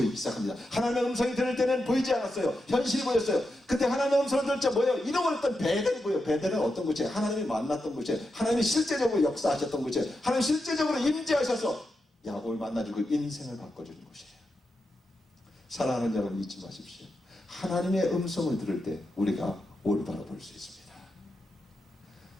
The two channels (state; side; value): normal; both; correlation 0.87